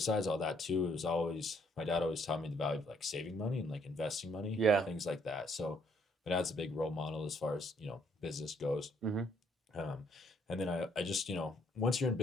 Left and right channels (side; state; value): both; normal; correlation 0.68